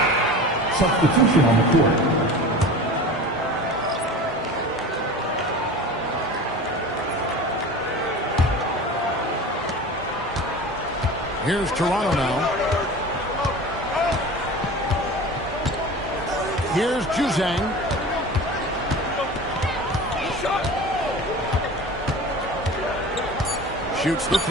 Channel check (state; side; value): normal; both; correlation 0.35